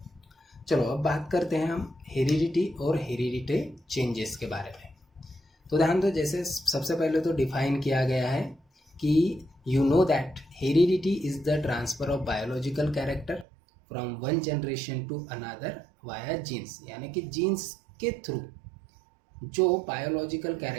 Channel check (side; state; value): left; drops out; at 13.5 s